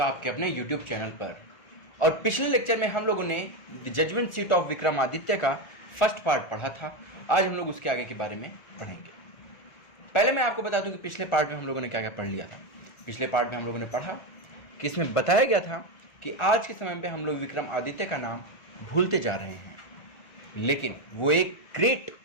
आपके अपने यूट्यूब चैनल पर। और पिछले लेक्चर में हम लोगों ने the judgement seat of Vikramaditya का फर्स्ट पार्ट पढ़ा था। आज हम लोग उसके आगे के बारे में पढ़ेंगे। पहले मैं आपको बता दूं कि पिछले पार्ट में हम लोगों ने क्या क्या पढ़ लिया था। पिछले पार्ट में हम लोगों ने पढ़ा कि इसमें बताया गया था कि आज के समय में हम लोग विक्रमादित्य का नाम भूलते जा रहे हैं, लेकिन वो एक ग्रेट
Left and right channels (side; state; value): right; late; 1.4 ms